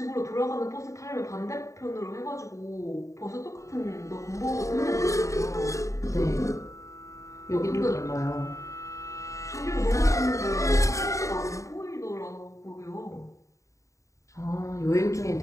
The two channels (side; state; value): right; late; 0.15 ms